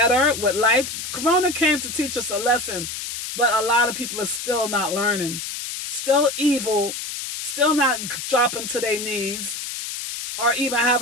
with life. Corona came to teach us a lesson, but a lot of people are still not learning. Still evil. Still not dropping to their knees or even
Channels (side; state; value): left; noise; hiss, 6 dB below the sound